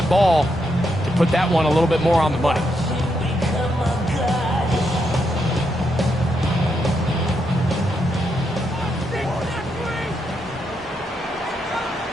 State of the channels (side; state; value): both; normal; correlation 0.80